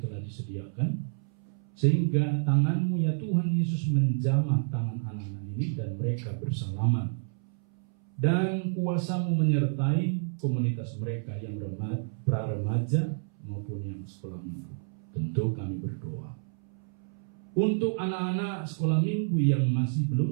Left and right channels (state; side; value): silent; left; 58 dB below the other